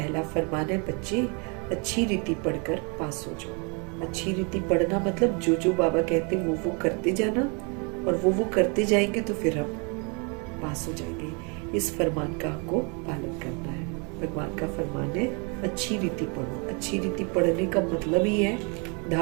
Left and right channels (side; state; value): left; quieter; 33.7 dB